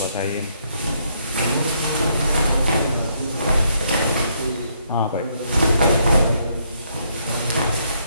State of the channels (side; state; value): both; inverted; correlation -0.72